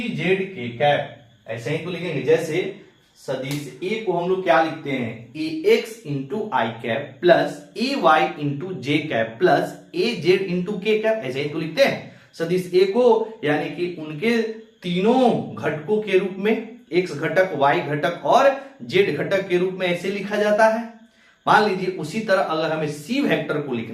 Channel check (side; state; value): both; identical; correlation 1.00